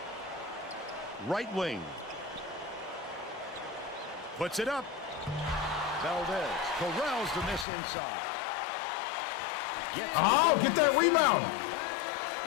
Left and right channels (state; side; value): drops out; right; at 7.7 s